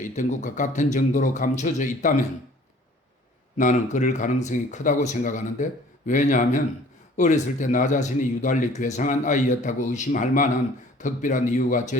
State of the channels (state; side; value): normal; both; correlation 0.52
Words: 것과 같은 정도로 감춰져 있다면 나는 그럴 가능성이 크다고 생각하는데, 왜냐하면 어렸을 때 나 자신이 유달리 괴상한 아이였다고 의심할 만한 특별한 이유가